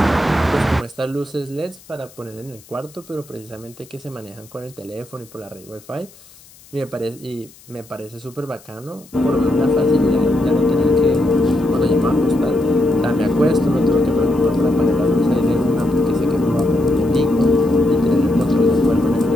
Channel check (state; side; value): noise; left; hiss, 24 dB below the sound